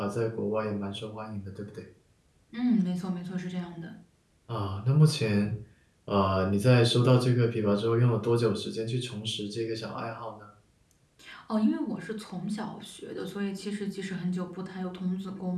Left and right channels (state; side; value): identical; both; correlation 1.00